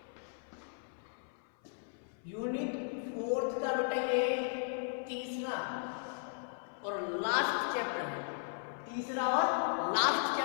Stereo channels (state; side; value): silent; right; 54 dB below the other